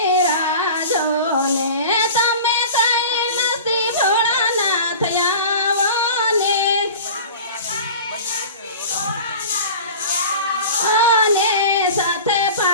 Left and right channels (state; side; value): inverted; both; correlation -0.37